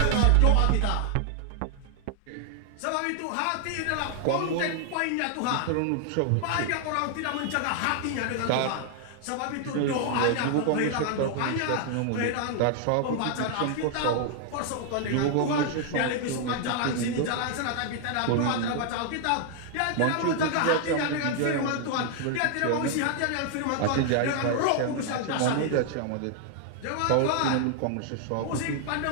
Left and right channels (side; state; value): both; different; correlation 0.00